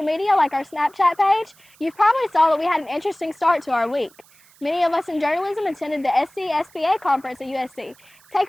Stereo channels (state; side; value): noise; right; hiss, 28 dB below the sound